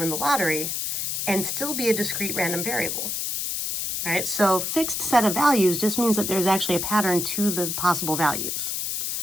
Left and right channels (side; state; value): left; noise; hiss, 2 dB below the sound